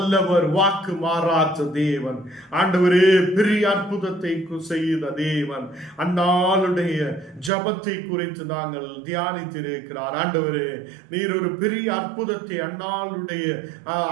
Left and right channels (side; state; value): left; drops out; at 7.5 s